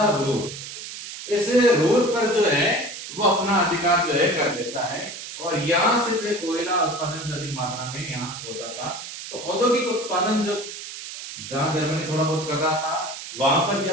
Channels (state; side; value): noise; right; hiss, 10 dB below the sound